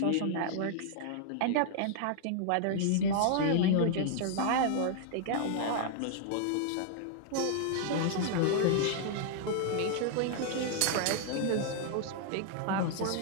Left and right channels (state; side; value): different; both; correlation -0.01